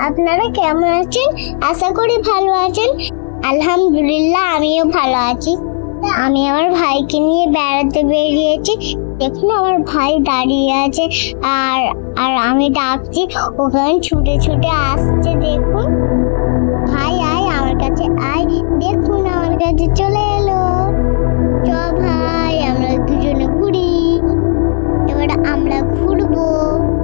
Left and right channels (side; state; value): right; silent; digital silence